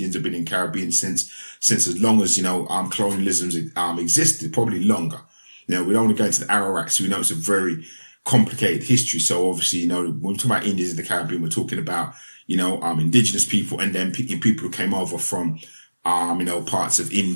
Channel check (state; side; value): inverted; both; correlation -1.00